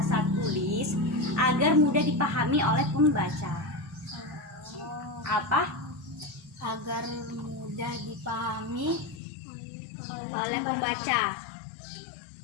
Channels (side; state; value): right; drops out; at 9.2 s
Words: tulis agar mudah dipahami oleh pembaca. Apa? Agar mudah dipahami oleh pembaca.